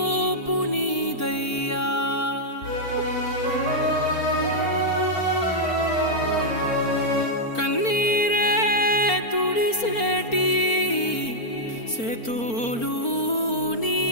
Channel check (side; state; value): right; late; 4.4 ms